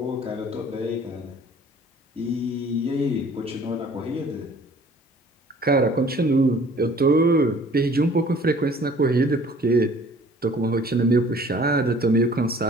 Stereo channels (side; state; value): both; normal; correlation 0.52